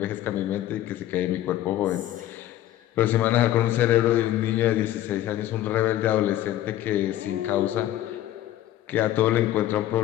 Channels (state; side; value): quieter; right; 13.4 dB